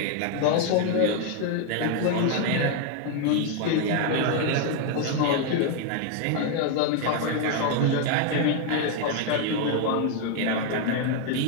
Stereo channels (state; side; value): different; both; correlation 0.00